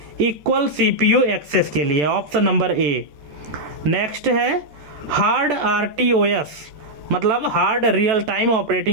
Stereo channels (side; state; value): left; late; 14 ms